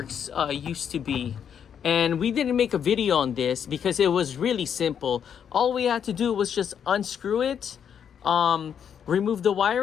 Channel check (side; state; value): right; quieter; 8.1 dB